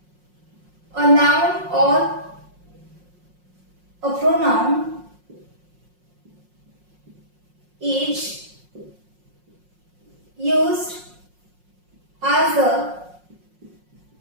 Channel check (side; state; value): left; late; 5.5 ms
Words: a noun or a pronoun is used as a